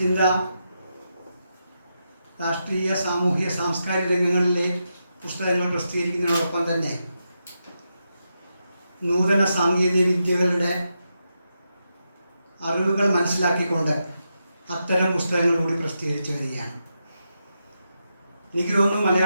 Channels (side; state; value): both; inverted; correlation -0.85